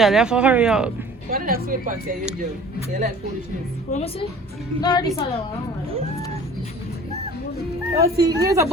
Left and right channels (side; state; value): both; normal; correlation 0.46